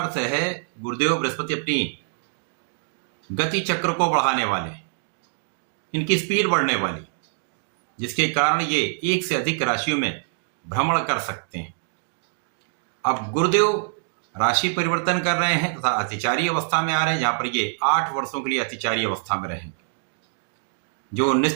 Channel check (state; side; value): silent; left; digital silence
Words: है गुरुदेव बृहस्पति अपनी गति चक्र को बढ़ाने वाले, इनकी स्पीड बढ़ने वाली, जिसके कारण ये एक से अधिक राशियों में भ्रमण कर सकते हैं। अब गुरुदेव राशि परिवर्तन कर रहे हैं तथा अतिचारी अवस्था में आ रहे हैं, जहां पर ये 8 वर्षों के लिए अतिचारी अवस्था में रहेंगे, जो